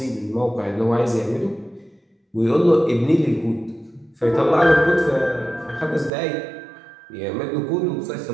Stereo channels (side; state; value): left; drops out; at 6.1 s